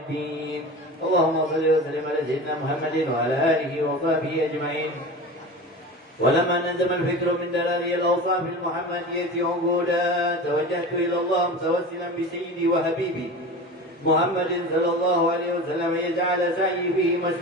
اللهم صل وسلم على سيدنا محمد وعلى آله وصحبه أجمعين. ولما نزم الفكر من دلالي الأوصاف المحمدية عقودا توجهت إلى الله متوسلا بسيدي وحبيبي محمد صلى الله عليه وسلم يجعل سعي فيه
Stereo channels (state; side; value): normal; both; correlation 0.32